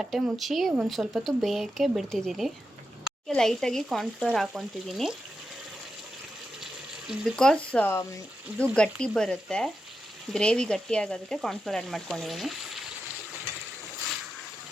ಮುಚ್ಚಿ ಒಂದು ಸ್ವಲ್ಪ ಹೊತ್ತು ಬೇಯಕ್ಕೆ ಬಿಡ್ತಿದ್ದೀನಿ. ಲೈಟಾಗಿ ಕಾರ್ನ್ಫ್ಲೋರ್ ಹಾಕ್ಕೊತಿದ್ದೀನಿ. ಬಿಕಾಸ್ ಇದು ಗಟ್ಟಿ ಬರುತ್ತೆ, ಗ್ರೇವಿ ಗಟ್ಟಿ ಆಗೋದಕ್ಕೆ ಕಾರ್ನ್ಫ್ಲೋರ್ ಆ್ಯಡ್ ಮಾಡ್ಕೊಂಡಿದ್ದೀನಿ.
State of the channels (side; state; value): both; normal; correlation 0.88